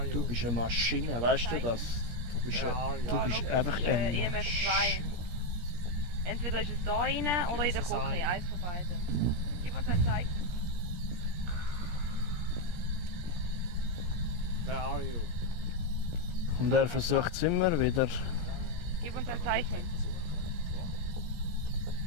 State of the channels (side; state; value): left; late; 17 ms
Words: you? Du bist eine Maschine, weißt du das? Du bist, Where are you? du bist einfach ein EMF 2. Entweder ist es da rein oder in der es ein. Küche, eins von beiden. Gib uns ein Zeichen. Where are you? Und er versucht es immer wieder. Gib uns ein Zeichen.